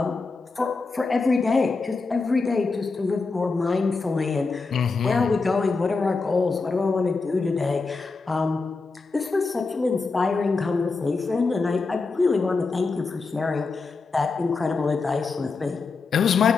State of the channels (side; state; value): right; quieter; 4.2 dB